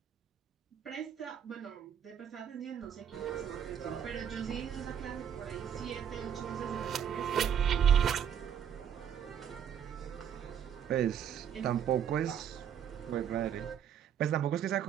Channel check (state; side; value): quieter; left; 8.7 dB